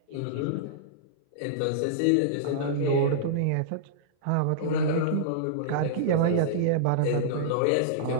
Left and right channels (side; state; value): both; different; correlation -0.03